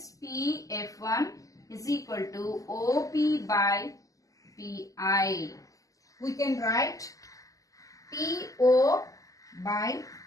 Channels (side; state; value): right; late; 0.17 ms